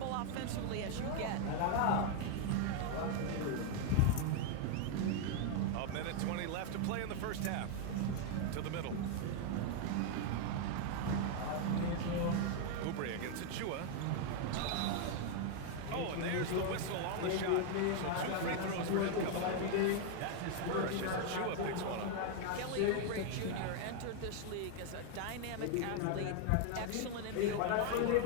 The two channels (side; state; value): both; different; correlation 0.00